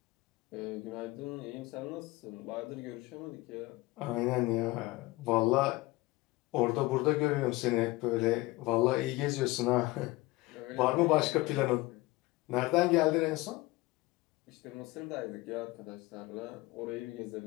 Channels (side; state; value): right; quieter; 21.1 dB